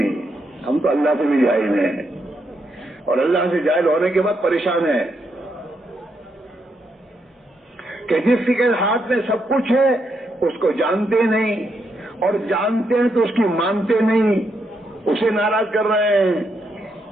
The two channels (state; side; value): normal; both; correlation 0.80